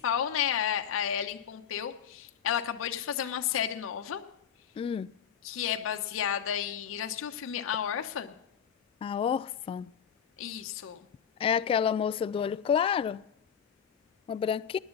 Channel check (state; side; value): quieter; right; 8.2 dB